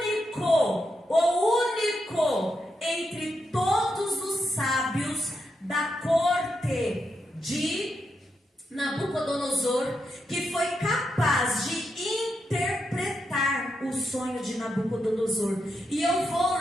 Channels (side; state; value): both; normal; correlation 0.84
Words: entre todos os sábios da corte de Nabucodonosor, que foi capaz de interpretar o sonho de Nabucodonosor. E eu vou,